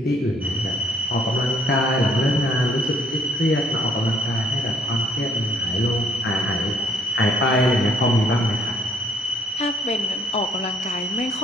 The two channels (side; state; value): both; normal; correlation 0.64